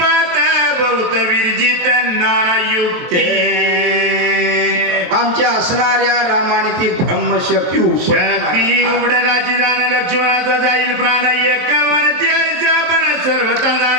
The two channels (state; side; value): late; left; 23 ms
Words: बहुत विरजित नाना युक्ते. आमच्या असणाऱ्या रामाने ती ब्रह्मशक्ती शक्ती उघडराची दान लक्ष्मणाचा जाईल प्राण एक पण सर्वता